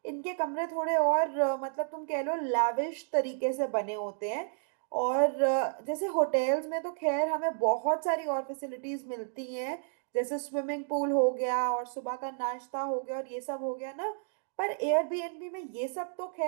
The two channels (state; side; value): silent; left; digital silence